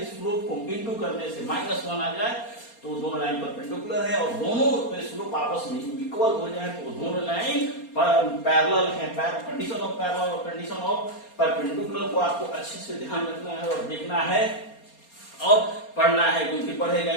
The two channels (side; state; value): right; late; 4.3 ms